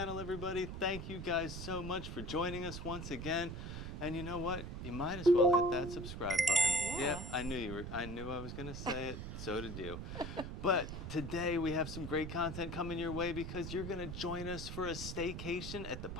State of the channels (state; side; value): noise; right; rumble, 7 dB below the sound